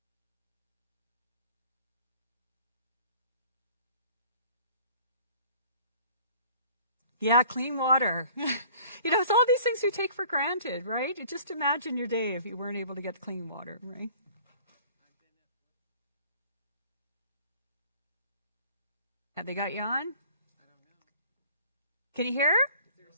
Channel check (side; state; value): both; inverted; correlation -0.52